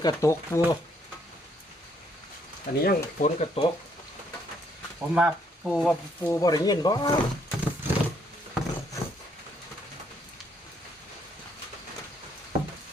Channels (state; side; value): normal; both; correlation 0.70